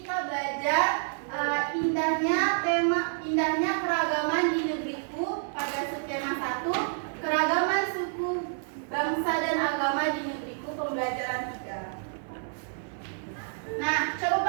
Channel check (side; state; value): left; silent; 58 dB below the other